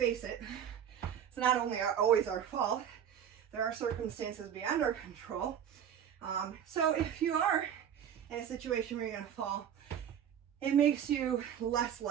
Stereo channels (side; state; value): left; quieter; 9.1 dB